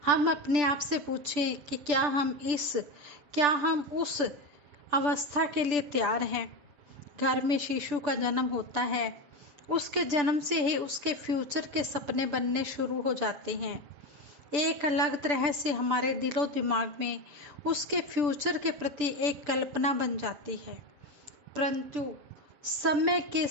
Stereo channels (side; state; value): left; late; 6.8 ms